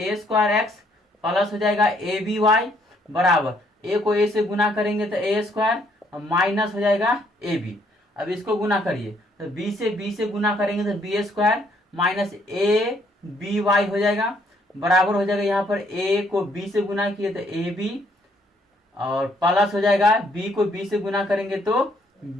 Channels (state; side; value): normal; both; correlation 0.68